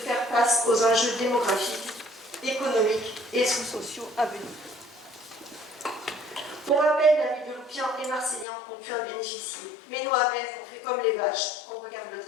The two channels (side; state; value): right; drops out; at 8.5 s